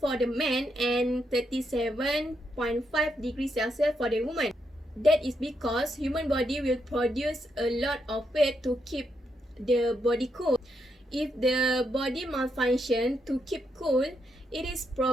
the man and 37.5 degrees Celsius for the woman. That is because human body will produce a lot of weight to keep the body cool. If the body malfunction to keep cool, it is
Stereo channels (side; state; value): both; normal; correlation 0.80